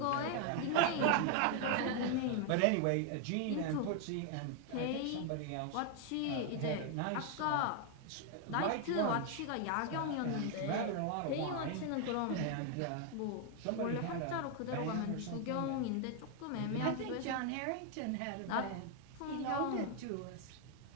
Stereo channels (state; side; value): different; both; correlation 0.00